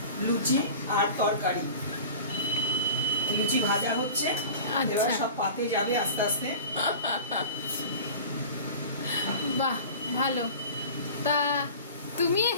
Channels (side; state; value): both; inverted; correlation -0.39